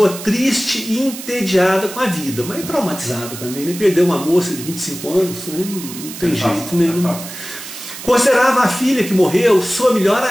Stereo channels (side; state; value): right; noise; hiss, 11 dB below the sound